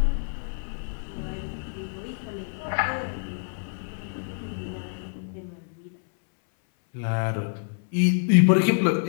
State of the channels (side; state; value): right; silent; 60 dB below the other